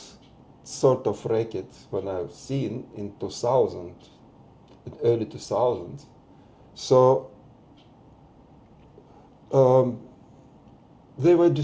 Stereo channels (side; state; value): both; identical; correlation 1.00